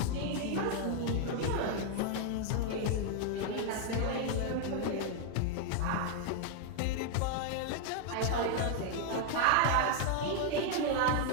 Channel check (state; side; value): different; both; correlation 0.00